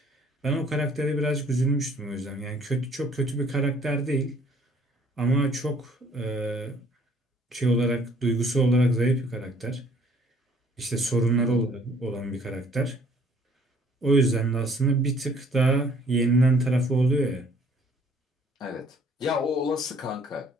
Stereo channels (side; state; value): both; normal; correlation 0.59